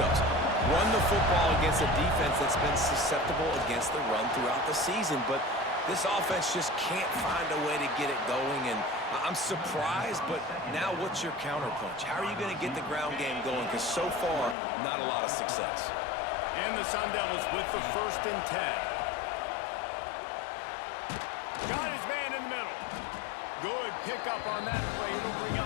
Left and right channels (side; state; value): right; drops out; at 14.6 s